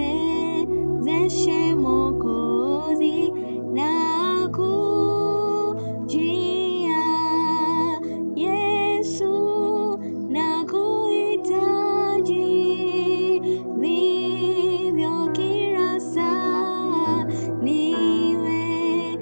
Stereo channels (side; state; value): both; inverted; correlation -1.00